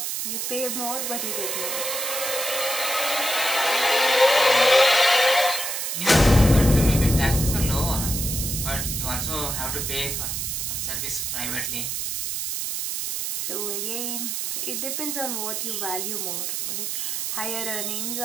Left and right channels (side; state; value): right; noise; hiss, 2 dB below the sound